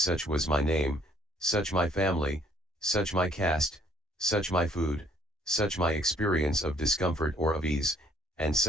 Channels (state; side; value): normal; both; correlation 0.63